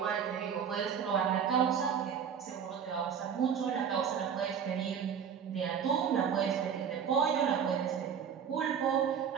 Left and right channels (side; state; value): left; quieter; 7.6 dB